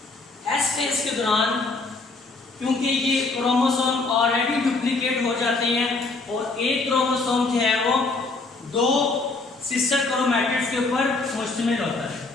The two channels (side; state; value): right; quieter; 3.6 dB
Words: एस फेज के दौरान क्योंकि ये क्रोमोसोम ऑलरेडी डुप्लीकेट हो जाते हैं और एक क्रोमोसोम जो है वो दो सिस्टर क्रोमैटिड्स के ऊपर मुश्तमिल होता है।